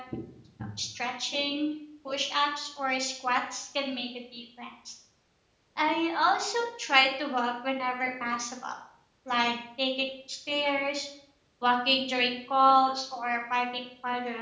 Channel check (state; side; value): identical; both; correlation 1.00